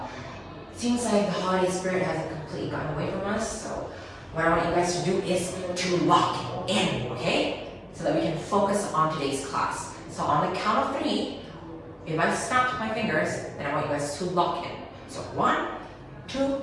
Seems like the holiday spirit hasn't completely gotten away from us, so what I want you guys to do is to lock in, okay? So that we can focus on today's class. So on the count of 3, if I snap my fingers, then I want you guys to lock in. So 1, 2,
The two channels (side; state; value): both; identical; correlation 1.00